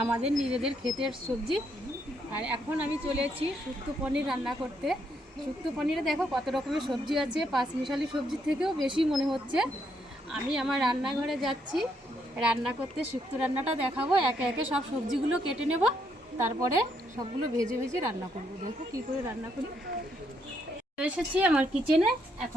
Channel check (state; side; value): normal; both; correlation 0.75